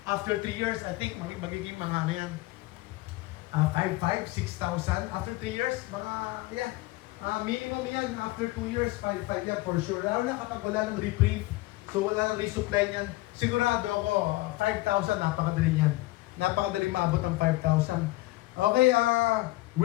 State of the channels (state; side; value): quieter; right; 19.7 dB